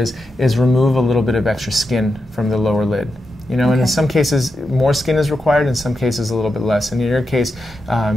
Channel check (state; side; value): normal; both; correlation 0.88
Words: is remove a little bit of extra skin from the lower lid. And in some cases more skin is required, in some cases a little bit less. And in your case,